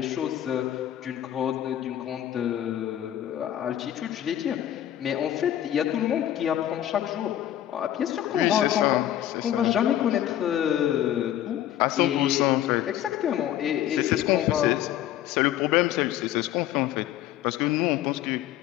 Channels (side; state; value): right; quieter; 11.9 dB